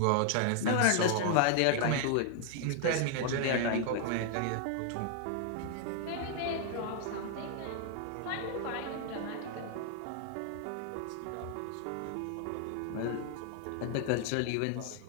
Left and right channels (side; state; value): both; different; correlation 0.00